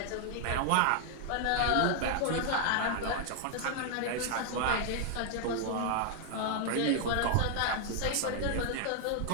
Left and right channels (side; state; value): both; different; correlation 0.00